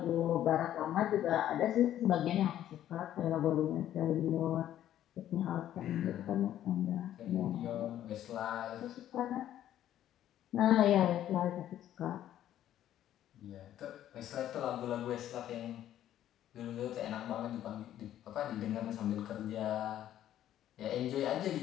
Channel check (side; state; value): right; quieter; 11.8 dB